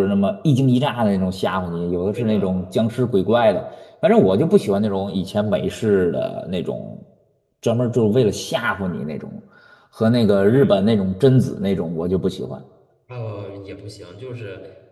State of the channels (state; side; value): identical; both; correlation 1.00